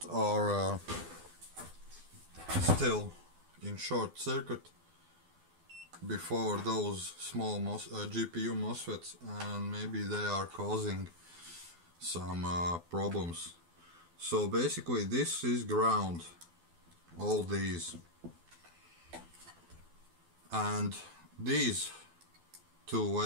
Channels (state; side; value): late; left; 12 ms